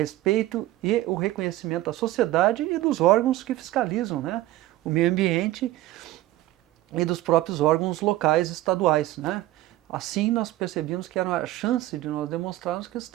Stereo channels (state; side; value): quieter; left; 15.9 dB